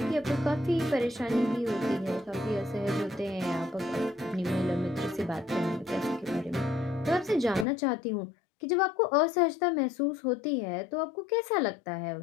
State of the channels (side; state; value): right; drops out; at 7.7 s